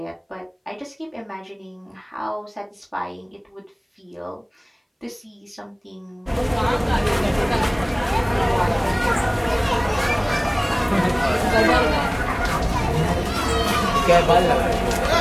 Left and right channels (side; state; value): both; identical; correlation 1.00